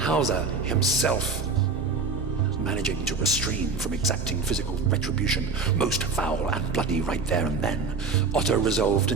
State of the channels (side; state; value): left; quieter; 4.7 dB